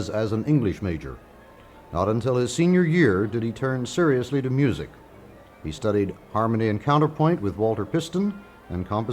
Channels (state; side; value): identical; both; correlation 1.00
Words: as an English major. Not until his senior year did he turn seriously to music. He studied harmony and counterpoint with Walter Piston and